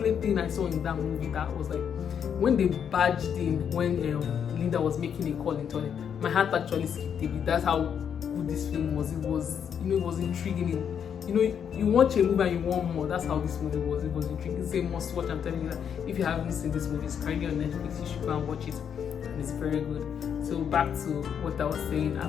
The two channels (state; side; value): quieter; right; 8.0 dB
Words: thing I saw in that movie that was like, when they barged in, when Linda was making a call into it, my heart actually skipped a bit. That's how good this film was. It was, it was intriguing. You watch a movie and you want more. That's how this movie was. It was intriguing. It's a must watch. I'm telling you that if you haven't seen this movie, it's currently on Netflix. You should go and watch it, and it's very good. So back to what I was saying